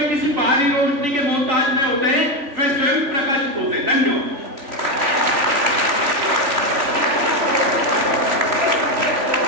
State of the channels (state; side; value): late; left; 3.4 ms